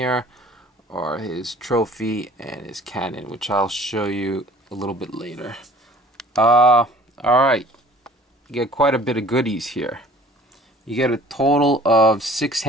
are his trophy and his cannon, which I'll show you a little bit later. Alright, you get quite a bit of goodies here. You get a total of 6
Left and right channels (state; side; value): normal; both; correlation 0.50